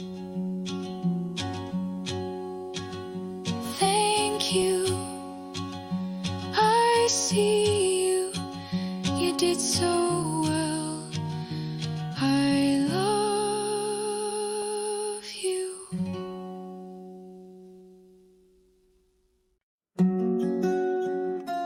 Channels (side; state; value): both; identical; correlation 1.00